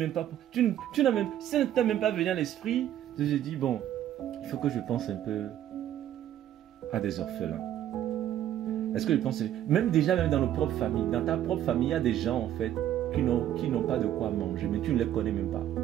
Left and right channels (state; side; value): quieter; left; 11.6 dB